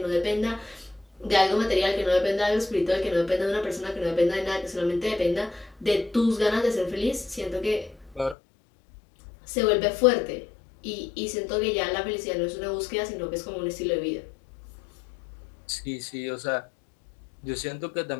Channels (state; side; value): drops out; right; at 8.3 s